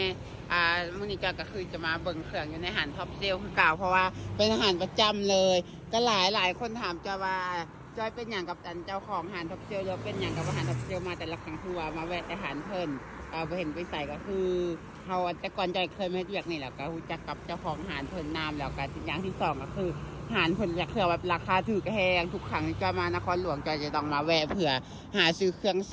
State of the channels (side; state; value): both; identical; correlation 1.00